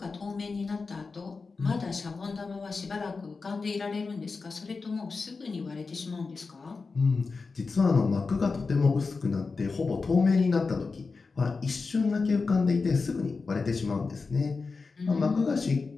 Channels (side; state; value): right; quieter; 4.3 dB